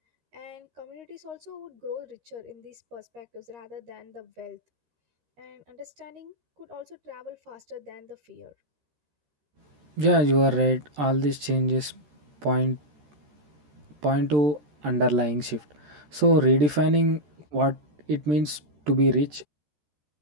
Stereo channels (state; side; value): late; left; 13 ms